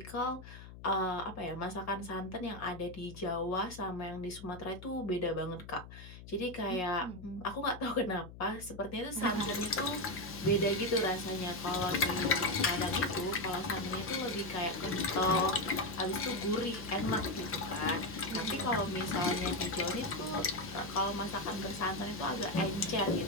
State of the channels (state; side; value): noise; left; hum, 15 dB below the sound